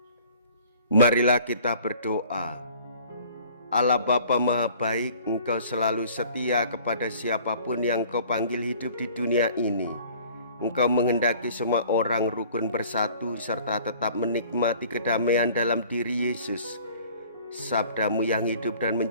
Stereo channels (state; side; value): inverted; both; correlation -0.51